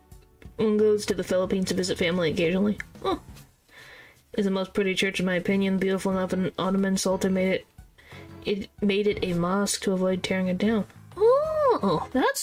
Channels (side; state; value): both; identical; correlation 1.00